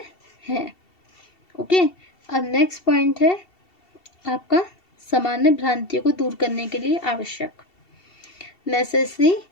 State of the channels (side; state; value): right; late; 2.7 ms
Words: है। ओके, अब नेक्स्ट पॉइंट है आपका सामान्य भ्रांतियों को दूर करने के लिए आवश्यक, necessary